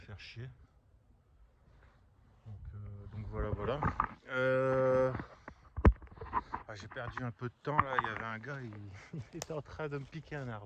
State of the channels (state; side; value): identical; both; correlation 1.00